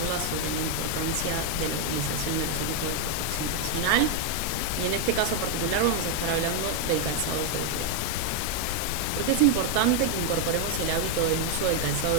sobre la importancia de la utilización de los equipos de protección personal y en este caso particular vamos a estar hablando del calzado de seguridad. ¿Por qué es importante que incorporemos el hábito del uso del calzado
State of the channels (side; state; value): right; noise; hum, 23 dB below the sound